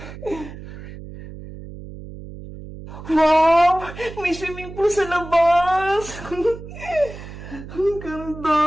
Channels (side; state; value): right; noise; hum, 13 dB below the sound